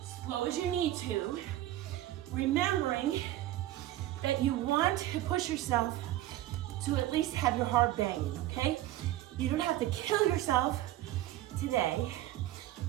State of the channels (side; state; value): left; quieter; 14.6 dB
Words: Slow as you need to, remembering that you want to push yourself to at least have your heart banging, okay? You don't have to kill yourself today,